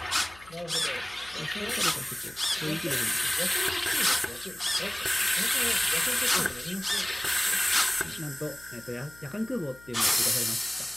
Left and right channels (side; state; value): left; noise; hum, 23 dB below the sound